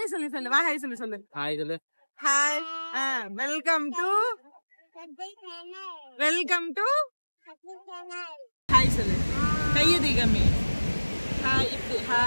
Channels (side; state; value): both; inverted; correlation -1.00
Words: சொல்லு. சொல்லு வா. ஹாய் சொல்லு. சொல்லு ஹாய் சொல்லு. ஹாய். வெல்கம் டு ஹாய் சொல்லு. கையை தீகமே. ஹாய் இப்படி.